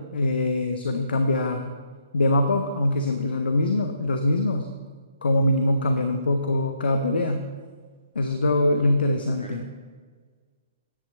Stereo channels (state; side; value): inverted; both; correlation -0.77